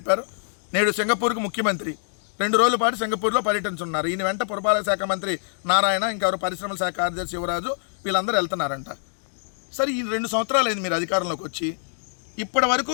నేడు సింగపూర్కు ముఖ్యమంత్రి 2 రోజుల పాటు సింగపూర్లో పర్యటించున్నారు. ఈయన వెంట పురపాలక శాఖ మంత్రి నారాయణ, ఇంకెవరు పరిశ్రమల శాఖ కార్యదర్శి యువరాజు, వీళ్ళందరూ వెళ్తున్నారంట. సరే, ఈ 2 సంవత్సరాలు అయింది మీరు అధికారంలోకి వచ్చి. ఇప్పటి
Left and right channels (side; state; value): right; silent; digital silence